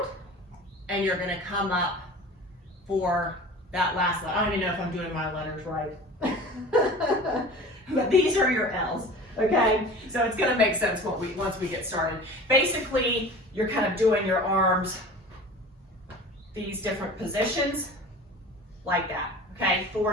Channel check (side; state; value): both; normal; correlation 0.39